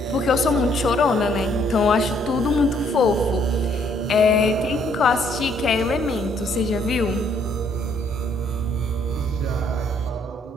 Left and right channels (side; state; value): both; normal; correlation 0.67